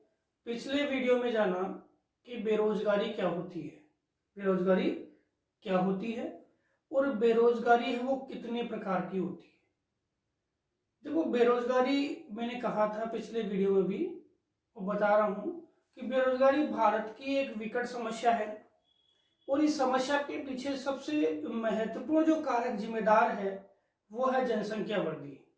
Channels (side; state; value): both; identical; correlation 1.00